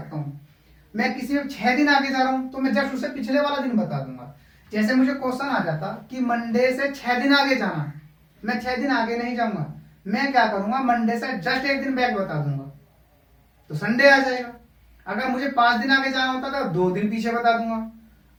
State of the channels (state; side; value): identical; both; correlation 1.00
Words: हूं। मैं किसी में 6 दिन आगे जा रहा हूं तो मैं जस्ट उसे पिछले वाला दिन बता दूंगा। जैसे मुझे क्वेश्चन आ जाता कि मंडे से 6 दिन आगे जाना, मैं 6 दिन आगे नहीं जाऊंगा, मैं क्या करूंगा, मंडे से जस्ट 1 दिन बैक बता दूंगा, तो संडे आ जाएगा। अगर मुझे 5 दिन आगे जाना होता तो 2 दिन पीछे बता दूंगा।